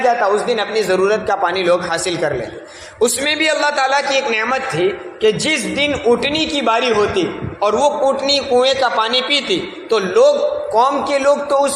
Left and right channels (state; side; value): identical; both; correlation 1.00